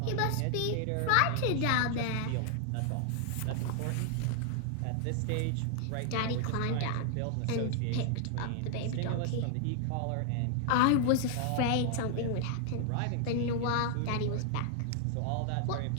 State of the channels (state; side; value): different; both; correlation 0.00